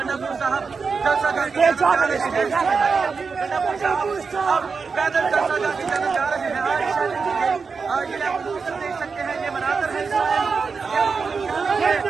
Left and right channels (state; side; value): quieter; left; 5.1 dB